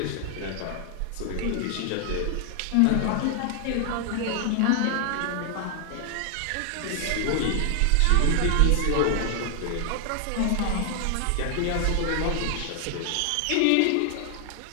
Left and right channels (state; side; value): different; both; correlation 0.00